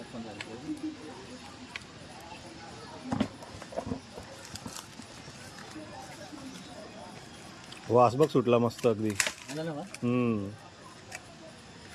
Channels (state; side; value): identical; both; correlation 1.00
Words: वास बघ सुटला मस्त अगदी.